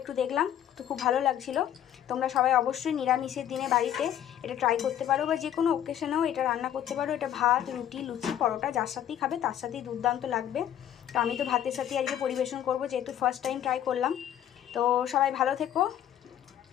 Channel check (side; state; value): right; quieter; 10.8 dB